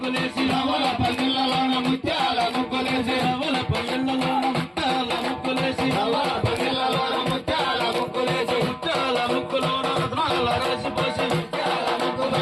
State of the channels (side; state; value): both; identical; correlation 1.00